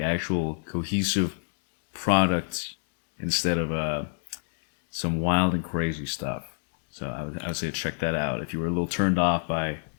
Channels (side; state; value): right; silent; 57 dB below the other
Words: actual cohesive product instead of some wild and crazy stuff. So I would say check that out if you were a little turned off by